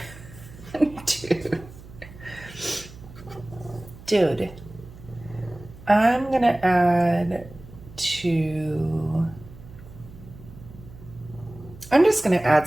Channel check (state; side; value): noise; right; hum, 18 dB below the sound